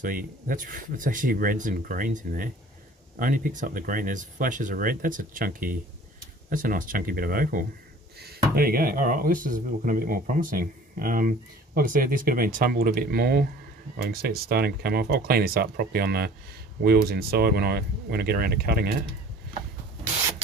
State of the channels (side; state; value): both; normal; correlation 0.48